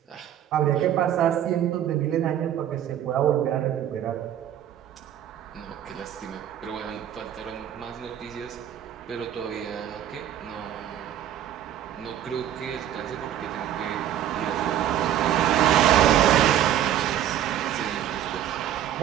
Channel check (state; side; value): quieter; left; 10.9 dB